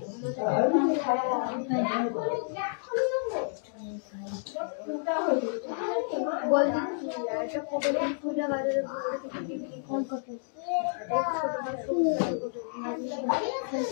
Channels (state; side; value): silent; right; digital silence